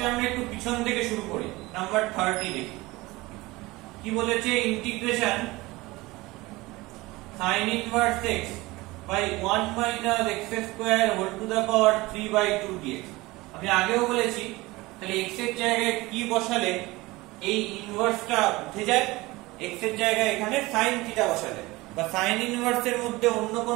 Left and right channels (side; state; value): left; quieter; 21.0 dB